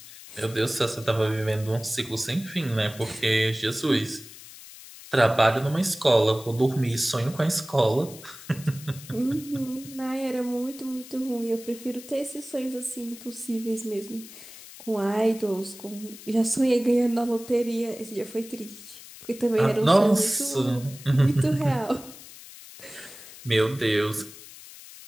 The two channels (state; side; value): noise; left; hiss, 17 dB below the sound